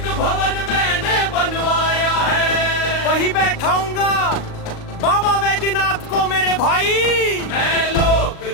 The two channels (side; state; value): right; late; 38 ms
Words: भवन मैंने बनवाया है, वही बैठाऊंगा बाबा वैद्यनाथ को मेरे भाई। मैं